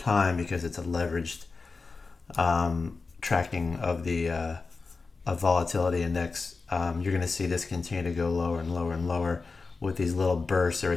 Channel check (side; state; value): right; quieter; 4.2 dB